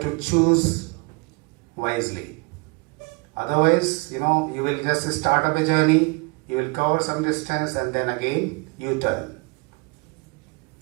to choose wisely. Otherwise, you will just start up a journey, you will cover some distance and then again you turn.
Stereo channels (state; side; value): quieter; left; 29.3 dB